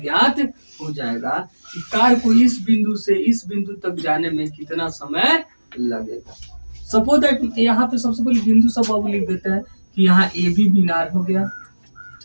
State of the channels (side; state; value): both; inverted; correlation -1.00